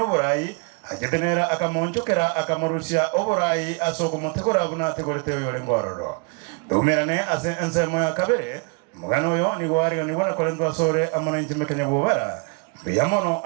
oborai ajetenera akamonchokera akamurusia oborai asoko mutegora buna tegorete yore ngororo dumerane ase nsemo ya kabere mugano yo ni gwari ni bwana kolendo asore amana intimekanya bobara biyamono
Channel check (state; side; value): quieter; left; 33.3 dB